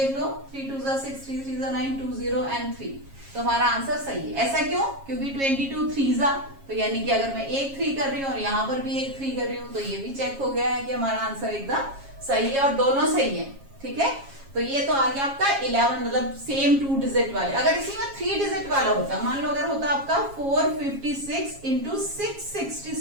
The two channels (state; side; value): late; left; 7.3 ms